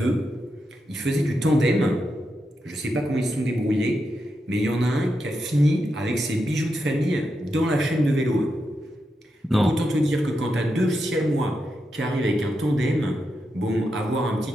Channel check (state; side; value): normal; both; correlation 0.86